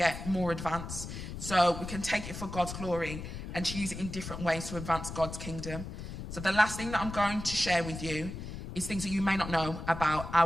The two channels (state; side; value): noise; left; rumble, 8 dB below the sound